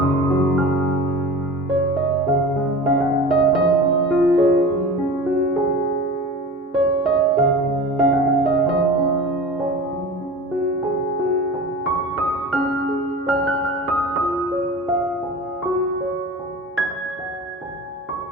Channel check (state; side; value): normal; both; correlation 0.35